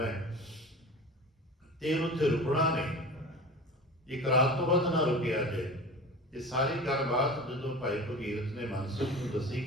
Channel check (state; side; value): normal; both; correlation 0.34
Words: ਤੇ ਉੱਥੇ ਰੁਕਣਾ ਨਹੀਂ, ਇੱਕ ਰਾਤ ਤੋਂ ਵੱਧ ਨਾ ਰੁਕਿਆ ਜੇ। ਇਹ ਸਾਰੀ ਗੱਲਬਾਤ ਜਦੋਂ ਭਾਈ ਭਗੀਰਥ ਨੇ ਮਨਸੁਖ ਨੂੰ ਦੱਸੀ